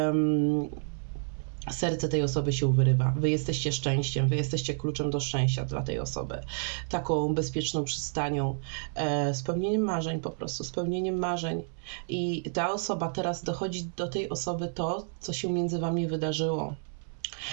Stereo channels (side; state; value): left; silent; 58 dB below the other